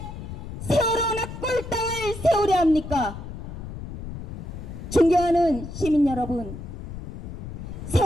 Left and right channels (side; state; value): left; noise; rumble, 9 dB below the sound